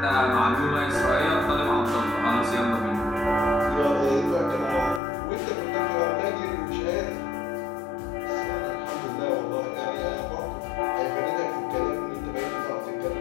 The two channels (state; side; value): drops out; right; at 5.0 s